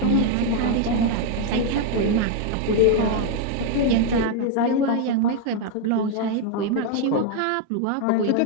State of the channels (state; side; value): different; both; correlation 0.00